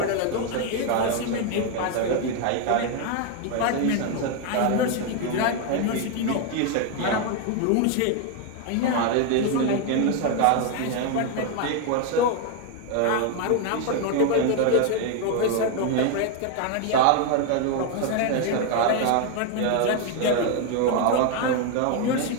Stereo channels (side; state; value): both; different; correlation 0.01